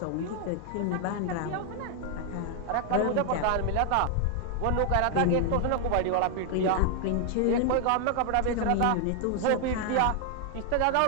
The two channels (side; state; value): both; different; correlation 0.00